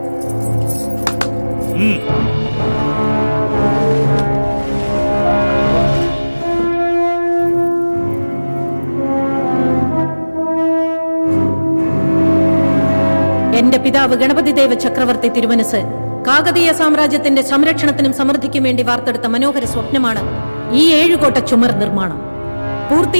എന്റെ പിതാവ് ഗണപതിദേവ ചക്രവർത്തി തിരുമനസ് കാകതീയ സാമ്രാജ്യത്തിന്റെ സംരക്ഷണത്തിനും സമൃദ്ധിക്കും വേണ്ടി വാർത്തെടുത്ത മനോഹര സ്വപ്നമാണ് ഈ 7 കോട്ട ചുമർ നിർമ്മാണം.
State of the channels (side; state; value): both; inverted; correlation -1.00